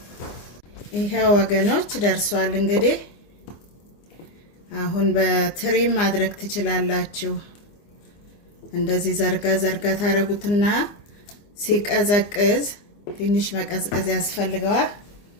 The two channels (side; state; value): right; late; 25 ms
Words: ይሄ ወገኖች ደርሷል። እንግዲህ አሁን በትሪ ማድረግ ትችላላችሁ። እንደዚህ ዘርጋ ዘርጋ ታረጉትና ሲቀዘቅዝ ትንሽ መቀዝቀዝ ያስፈልገዋል።